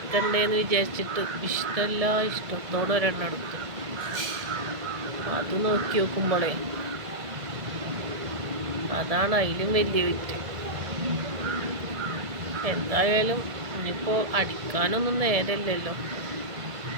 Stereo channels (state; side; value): late; left; 1.7 ms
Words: വിചാരിച്ചിട്ട് ഇഷ്ടത്തോടെ ഒരെണ്ണം എടുത്തു. അത് നോക്കി നോക്കുമ്പോഴേ അതാണ് അതിലും വലിയ വിറ്റ്. എന്തായാലും ഇനിയിപ്പോൾ അടിക്കാനൊന്നും നേരമില്ലല്ലോ,